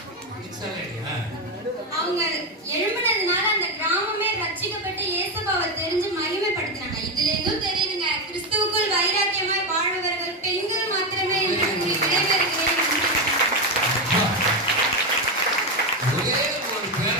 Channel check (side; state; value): both; normal; correlation 0.11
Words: அவங்க எழும்பினதுனால அந்த கிராமமே ரட்சிக்கப்பட்டு இயேசுவை தெரிஞ்சு மகிமைப்படுத்தினாங்க. இதுல இருந்தும் தெரியுதுங்க, கிறிஸ்துவுக்குள் வைராக்கியமாய் வாழ்பவர்கள் பெண்கள் மாத்திரமே என்று விடைபெறுகிறேன்.